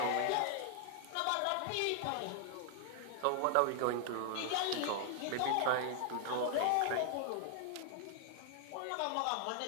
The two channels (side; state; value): both; different; correlation 0.00